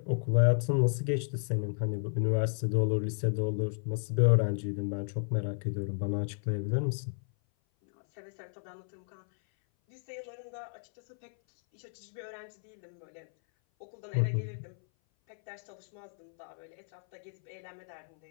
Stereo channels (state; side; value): silent; right; 56 dB below the other